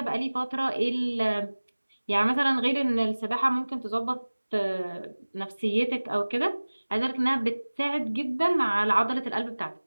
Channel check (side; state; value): both; inverted; correlation -1.00